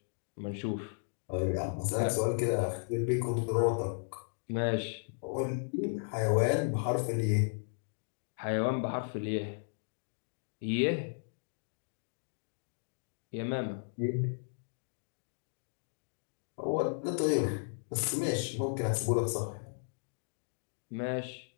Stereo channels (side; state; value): right; silent; digital silence